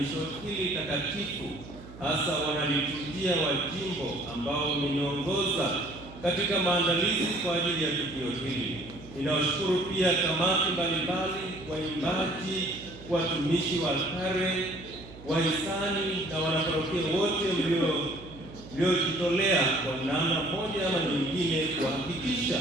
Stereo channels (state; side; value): noise; right; hum, 17 dB below the sound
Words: hili takatifu, hasa wanaliturujia wa jimbo ambao wameniongoza katika maandalizi kwa ajili ya tukio hili. Ninawashukuru pia kamati mbalimbali, waimbaji, watumishi wa altare, wahisani na wanaparokia wote mliojitolea kwa namna moja ama nyingine kuhakikisha